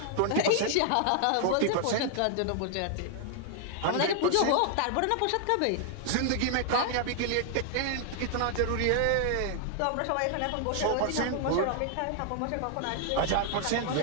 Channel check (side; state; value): both; different; correlation 0.00